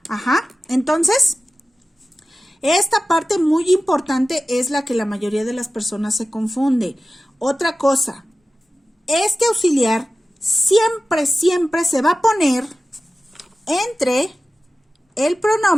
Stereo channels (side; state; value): both; normal; correlation 0.95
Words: Ajá, entonces, esta parte muy importante es la que la mayoría de las personas se confunde. Otra cosa, este auxiliar siempre se va a poner entre el